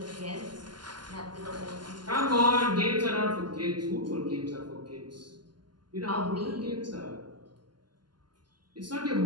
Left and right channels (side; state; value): left; late; 0.71 ms